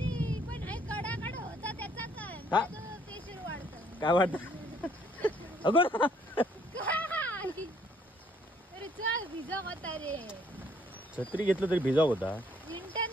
पण कडा होता त्याचा हा? प्रेशर वाढतं. काय वाटत अगं अरे चल भिजा होता रे. छत्री घेतलं तरी भिजाव होता.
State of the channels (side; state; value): both; normal; correlation 0.65